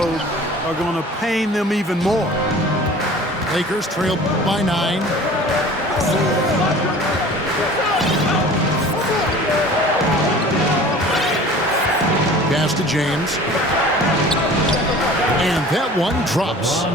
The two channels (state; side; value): normal; both; correlation 0.44